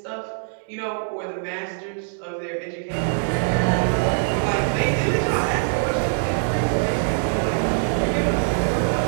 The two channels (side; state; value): left; silent; digital silence